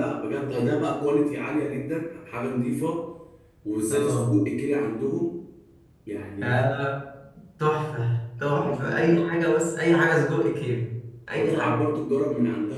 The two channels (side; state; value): both; identical; correlation 1.00